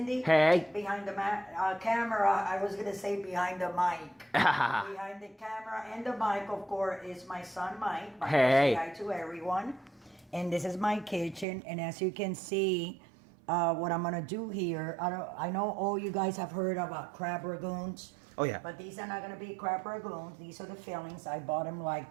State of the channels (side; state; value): left; drops out; at 11.5 s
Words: Hey. Behind the camera, I was gonna say behind the mic. Behind the camera and the mic, of course, is my son Mike. Hey. Say hi to everyone. And this is my kitchen, and as you can see, what I'm gonna do here. I know all you guys have heard about crab ragoons. Oh yeah. But these are not gonna be crab ragoons. These are the fillings. I bought them